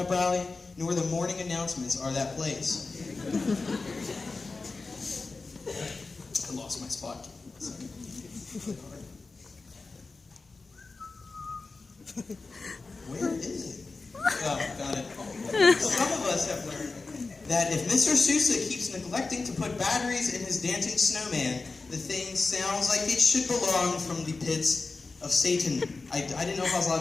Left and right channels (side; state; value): right; quieter; 3.9 dB